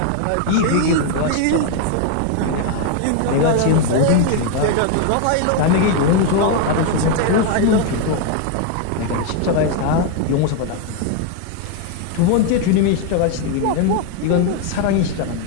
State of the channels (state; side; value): different; both; correlation 0.01